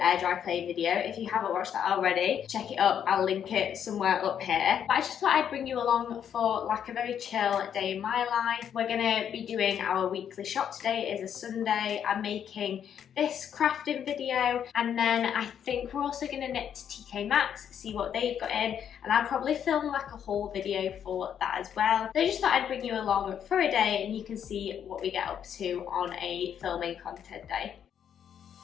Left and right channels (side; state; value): right; quieter; 8.8 dB